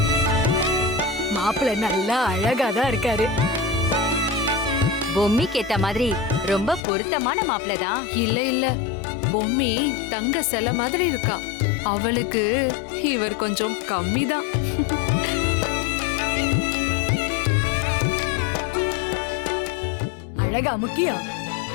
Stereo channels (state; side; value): drops out; right; at 6.8 s